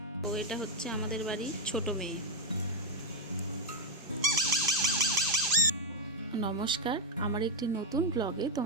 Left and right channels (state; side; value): normal; both; correlation 0.02